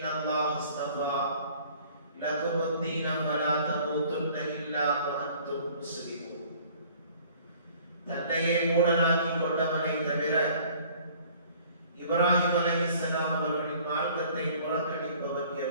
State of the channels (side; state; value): both; inverted; correlation -0.53